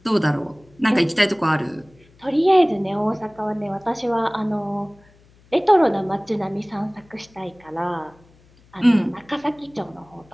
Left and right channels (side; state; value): left; noise; hum, 29 dB below the sound